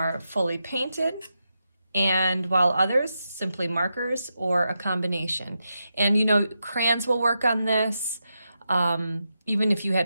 fully painted, and while others simply markers or a combination. And you know, crayons will work on this. Even if you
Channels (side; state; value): both; inverted; correlation -0.87